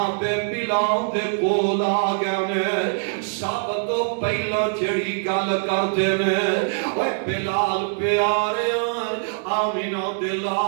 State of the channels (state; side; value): silent; left; 63 dB below the other